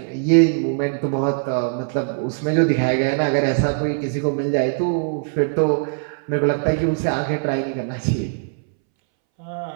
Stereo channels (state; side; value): silent; left; 64 dB below the other